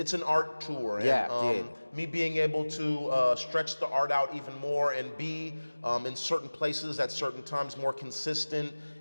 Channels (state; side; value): inverted; both; correlation -1.00